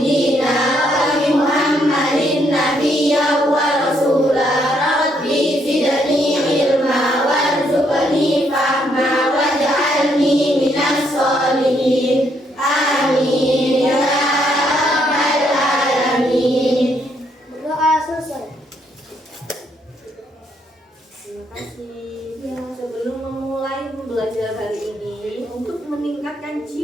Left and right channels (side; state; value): both; normal; correlation 0.73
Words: dina wa bi Muhammadin nabiyya wa rasula. Rabbi zidni ilma warzuqni fahma waj'alni minas sholihin. Amin ya rabbal alamin. Berdoa selesai. Terima kasih. Sebelum memulai pembelajaran hari ini, untuk meningkatkan